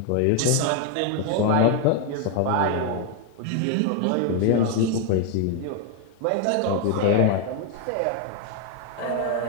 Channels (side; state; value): both; different; correlation 0.01